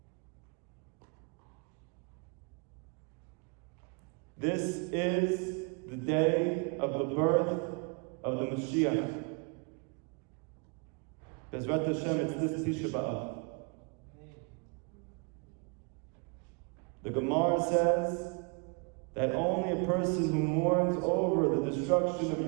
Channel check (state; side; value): quieter; left; 34.3 dB